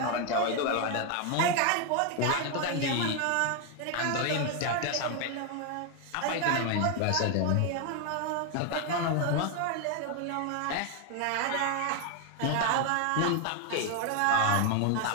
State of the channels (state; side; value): different; both; correlation 0.01